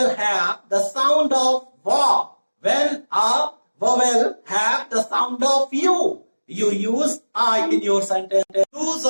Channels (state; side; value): inverted; both; correlation -1.00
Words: have the sound of wa, when a vowel have the sound of U, you use a in your sentence. Use